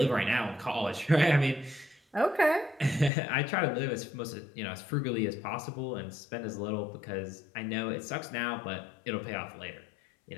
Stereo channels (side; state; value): right; drops out; at 3.1 s